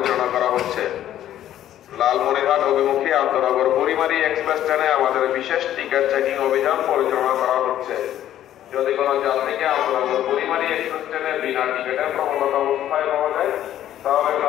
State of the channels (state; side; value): quieter; right; 11.9 dB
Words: করা হচ্ছে। লালমনিরহাট অভিমুখী আন্তনগর পরিমাণী এক্সপ্রেস ট্রেনে আমাদের বিশেষ টিকিট চেকিং অভিযান পরিচালনা করা হচ্ছে। যদি কোনো যাত্রীকে আন্তনগর পরিমাণী এক্সপ্রেস ট্রেনে বিনা টিকিটে ভ্রমণরত অবস্থায় পাওয়া যায়, তাহলে